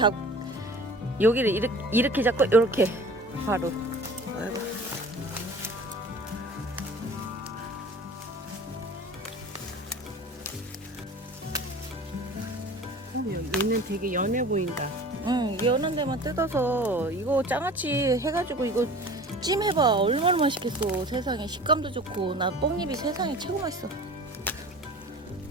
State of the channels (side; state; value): both; normal; correlation 0.42